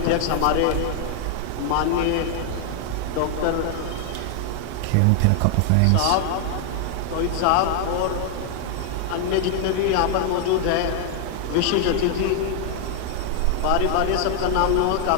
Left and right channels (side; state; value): both; different; correlation 0.00